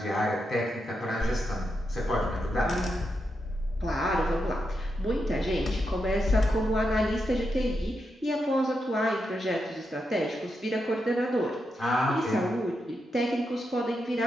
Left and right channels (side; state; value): both; normal; correlation 0.85